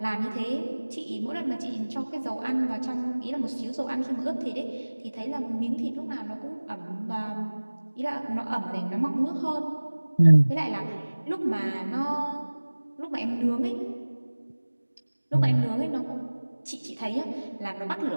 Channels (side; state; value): both; inverted; correlation -1.00